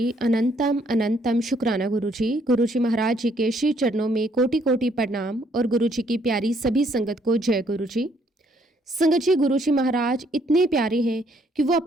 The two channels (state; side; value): normal; both; correlation 0.68